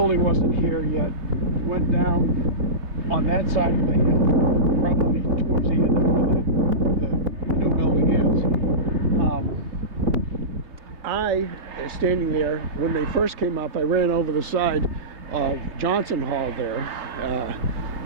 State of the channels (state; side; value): late; left; 3.3 ms